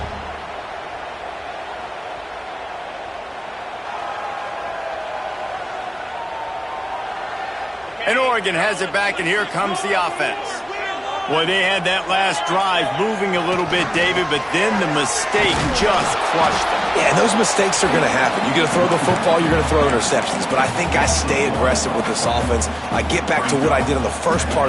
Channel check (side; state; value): both; identical; correlation 1.00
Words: And Oregon has it back, and here comes the offense. Boy, they had that last drive moving a little bit, David, but then the mistake just crushed them. Yeah, and those mistakes are going to happen. You're going to throw the football, you're going to throw interceptions. But I think I stay aggressive with this offense. I get back to what I did on the first part